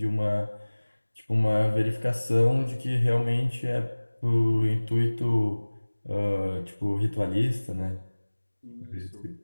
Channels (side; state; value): both; inverted; correlation -1.00